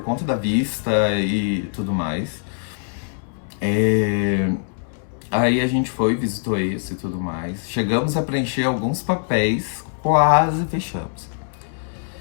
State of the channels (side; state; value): right; silent; 64 dB below the other